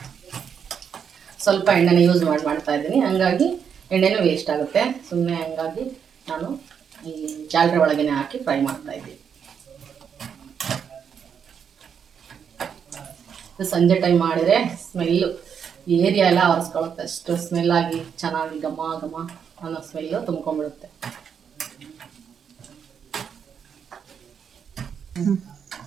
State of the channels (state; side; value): quieter; left; 7.3 dB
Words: ಸ್ವಲ್ಪ ಎಣ್ಣೆನ ಯೂಸ್ ಮಾಡ್ತಾ ಇದ್ದೀನಿ, ಹಂಗಾಗಿ ಎಣ್ಣೆನೂ ವೇಸ್ಟ್ ಆಗುತ್ತೆ ಸುಮ್ಮನೆ. ಹಂಗಾಗಿ ನಾನು ಈ ಜಾಗರೆ ಒಳಗೇ ಹಾಕಿ ಫ್ರೈ ಮಾಡ್ತಾ ಇದ್ದೀನಿ. ಸಂಜೆ ಟೈಮ್ ಮಾಡಿದರೆ ಸ್ಮೆಲ್ಲು ಏರಿಯಾ ಎಲ್ಲ ಒರೆಸ್ಕೊಳ್ಳುತ್ತೆ, ಅಷ್ಟು ಸ್ಮೆಲ್ಲಾಗಿ ಚೆನ್ನಾಗಿ ಘಮ ಘಮ ಅನ್ನೋ ಸ್ಮೆಲ್ಲು ತುಂಬ್ಕೊಂಡ್ಬಿಡುತ್ತೆ.